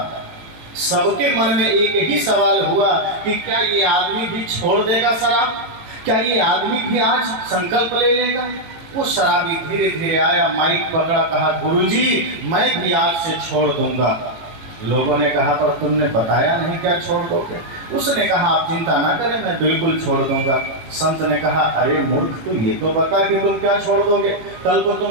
सबके मन में एक ही सवाल हुआ कि क्या ये आदमी भी छोड़ देगा शराब, क्या ये आदमी भी आज संकल्प ले लेगा। वो शराबी धीरे धीरे आया, माइक पकड़ा, कहा गुरुजी मैं भी आज से छोड़ दूंगा। लोगों ने कहा पर तुमने बताया नहीं क्या छोड़ दोगे। उसने कहा आप चिंता ना करें, मैं बिल्कुल छोड़ दूंगा। संत ने कहा अरे मूर्ख, तू ये तो बता कि तुम क्या छोड़ दोगे। कल को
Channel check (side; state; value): left; late; 18 ms